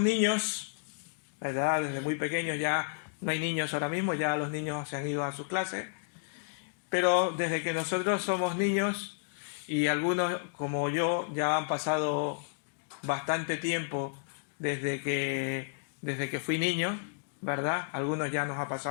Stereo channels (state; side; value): silent; right; digital silence